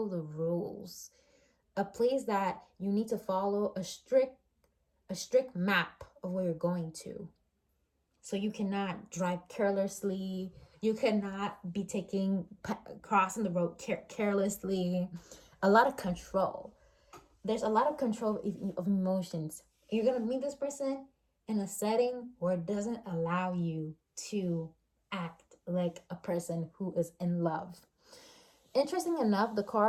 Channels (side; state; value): both; identical; correlation 1.00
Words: the rules. A place that you need to follow a strict map of where you're going to. So you cannot drive carelessly. You cannot be crossing the road carelessly. A lot of control. There's a lot of control of emotions. You're going to meet this person in a setting where it doesn't allow you to act like a person who is in love. Interesting enough, the